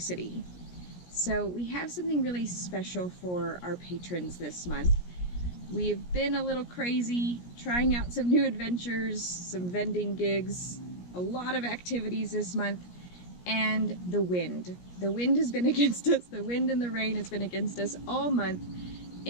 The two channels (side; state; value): right; late; 17 ms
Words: City. So we have something really special for our patrons this month. We've been a little crazy, trying out some new adventures, some vending gigs, a lot of activities this month, and the wind. The wind has been against us. The wind and the rain has been against us all month